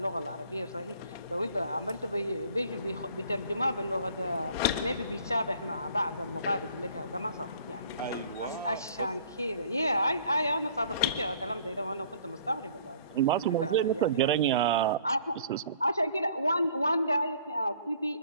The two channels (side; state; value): both; inverted; correlation -0.54